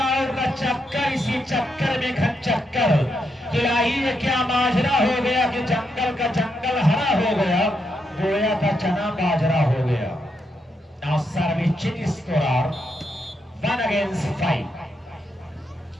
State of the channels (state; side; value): normal; both; correlation 0.81